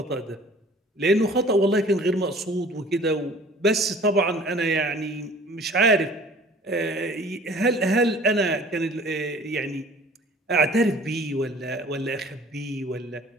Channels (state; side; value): normal; both; correlation 0.49